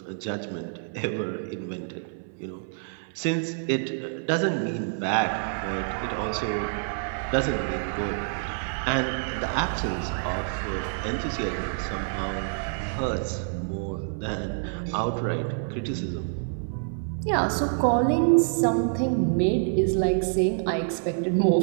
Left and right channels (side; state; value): left; silent; 58 dB below the other